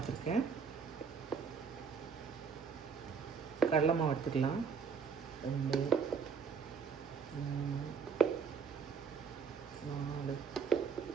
கடலை மாவு எடுத்துக்கலாம். 2 3 4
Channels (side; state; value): left; quieter; 6.0 dB